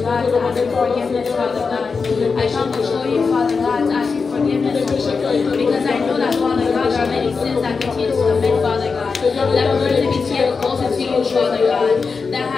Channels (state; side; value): quieter; right; 4.9 dB